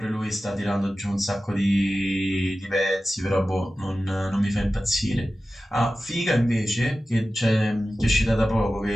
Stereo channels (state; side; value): normal; both; correlation 0.94